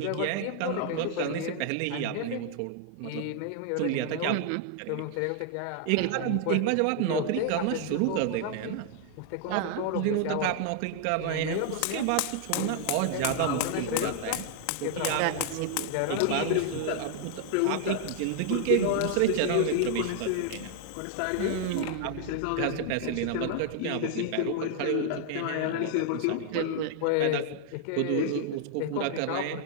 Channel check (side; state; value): both; different; correlation 0.00